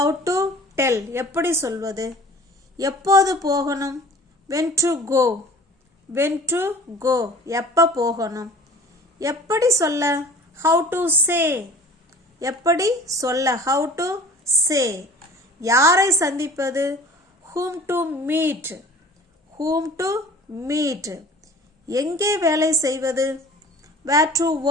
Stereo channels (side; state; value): both; normal; correlation 0.46